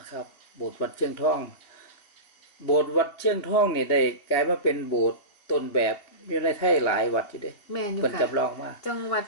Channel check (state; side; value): late; right; 2.7 ms